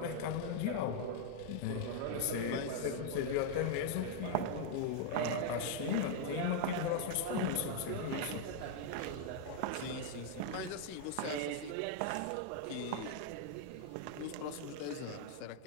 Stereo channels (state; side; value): different; both; correlation 0.00